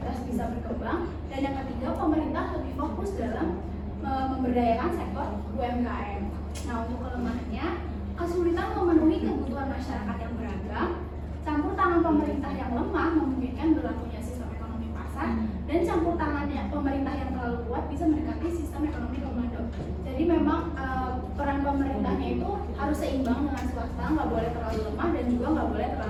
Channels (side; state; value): both; identical; correlation 1.00